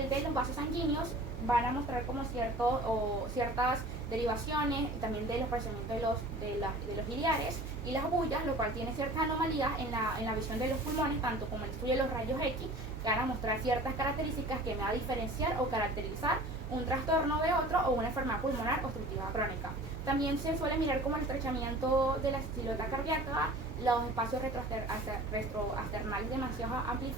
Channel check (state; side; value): noise; right; hum, 10 dB below the sound